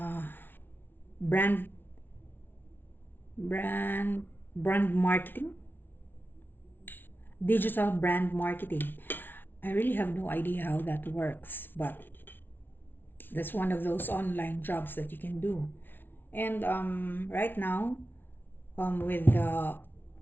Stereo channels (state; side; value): late; right; 0.098 ms